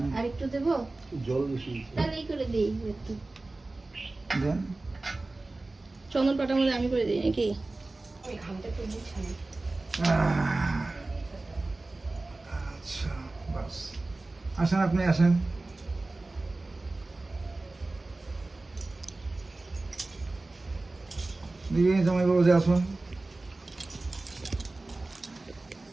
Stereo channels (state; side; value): quieter; left; 3.1 dB